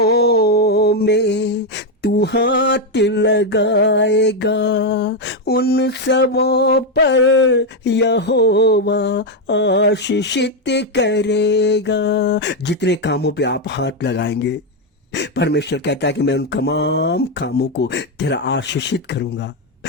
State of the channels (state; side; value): normal; both; correlation 0.04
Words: में तू हाथ लगाएगा उन सबों पर यहोवा आशीषित करेगा। जितने कामों पे आप हाथ लगाएंगे परमेश्वर कहता है कि मैं उन तमाम कामों को तेरा आशीषित करूंगा,